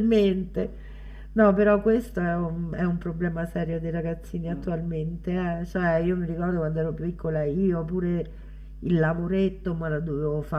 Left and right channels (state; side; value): identical; both; correlation 1.00